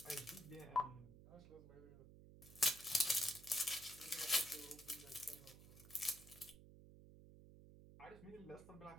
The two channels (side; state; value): right; noise; hum, 17 dB below the sound